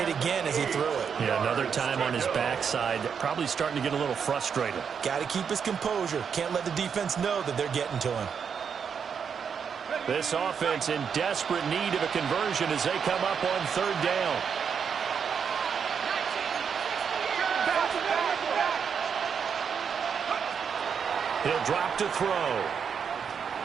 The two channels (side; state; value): left; quieter; 6.8 dB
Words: again as he threw it. Yeah, another time on his backside, probably starting to get a little frustrated. Got to keep his composure. Can't let the defense know that they're getting to him. This offense in desperate need of a conversion as they come up on 3rd down. He'll drop to throw.